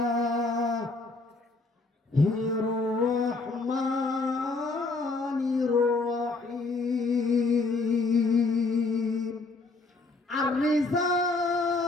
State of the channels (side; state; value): right; quieter; 3.6 dB